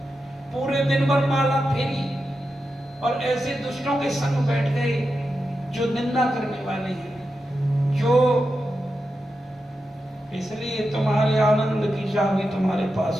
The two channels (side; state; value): both; normal; correlation 0.89